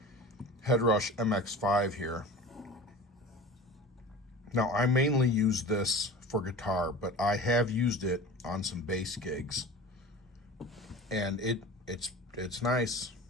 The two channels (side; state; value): both; normal; correlation 0.36